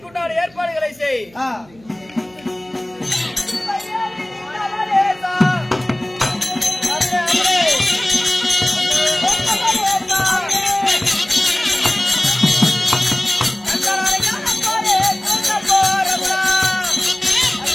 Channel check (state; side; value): noise; right; hum, 27 dB below the sound